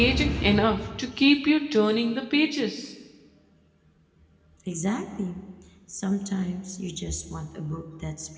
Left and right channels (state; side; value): identical; both; correlation 1.00